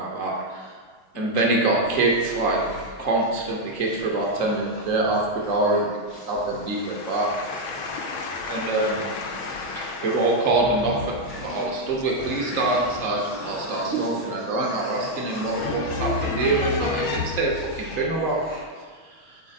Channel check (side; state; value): right; late; 6.3 ms